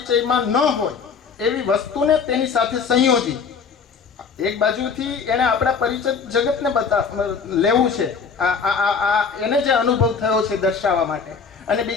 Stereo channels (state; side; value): quieter; right; 5.7 dB